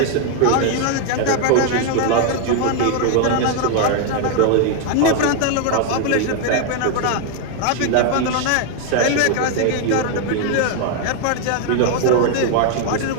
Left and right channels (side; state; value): both; different; correlation 0.00